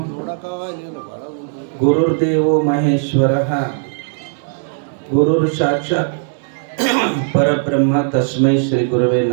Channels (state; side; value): silent; left; digital silence